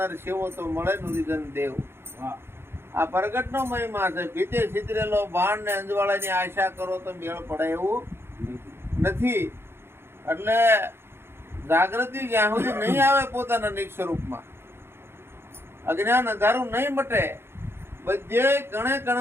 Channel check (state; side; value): late; left; 0.11 ms